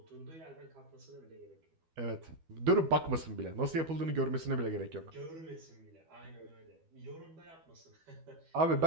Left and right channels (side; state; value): left; late; 12 ms